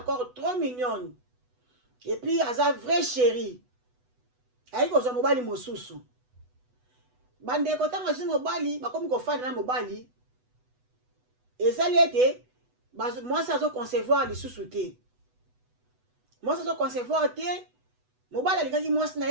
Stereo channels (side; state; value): left; late; 8.1 ms